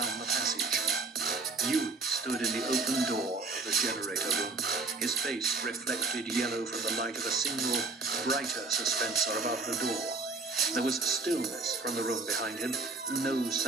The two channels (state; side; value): quieter; left; 3.8 dB